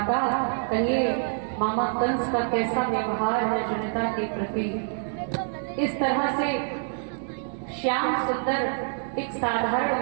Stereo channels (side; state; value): left; silent; 55 dB below the other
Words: कहिए मामा कंस का कैसा व्यवहार है जनता के प्रति। इस तरह से श्याम सुंदर एक साधारण